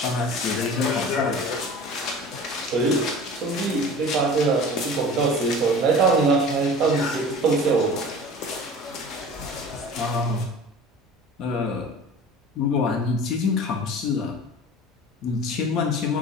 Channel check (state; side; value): normal; both; correlation 0.40